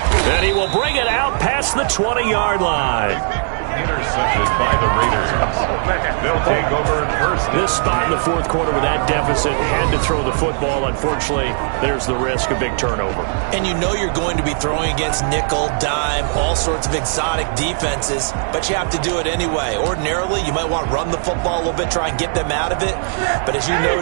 And he will bring it out past the 20-yard line. Intercepted by the Raiders. They'll take over 1st. This spot in the 4th quarter with that deficit, had to throw the football. Unfortunately, there's the risk of big turnover. And you know you're going to be throwing against nickel, dime, all sorts of exotic defenses, but you have to do it anyway. Ordinarily, you might want to run the football a little bit, try and get them out of it. But as you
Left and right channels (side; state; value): left; silent; digital silence